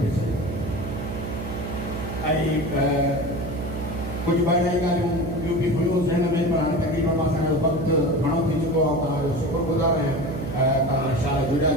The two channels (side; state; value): right; noise; hum, 6 dB below the sound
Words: बि सही ऐं कुझु ॿ अढाई ॻाल्हियूं ॿियूं बि हुयूं ज़हन में पर हाणे तक़रीबन मां असांजो वक़्तु घणो थी चुको आहे तव्हांजो शुक्रगुज़ार आहियां तव्हां शाला जुड़ा